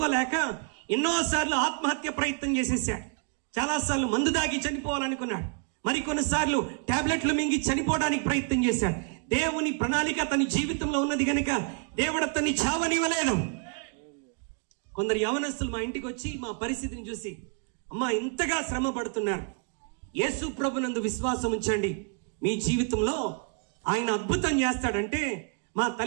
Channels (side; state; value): left; quieter; 37.0 dB